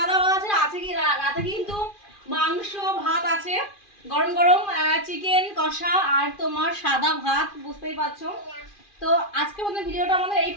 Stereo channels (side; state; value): right; late; 2.4 ms